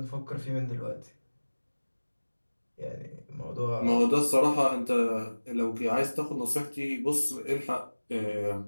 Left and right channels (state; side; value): inverted; both; correlation -1.00